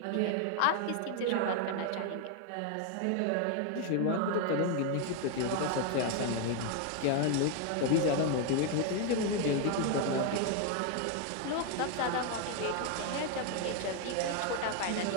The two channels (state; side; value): different; both; correlation 0.01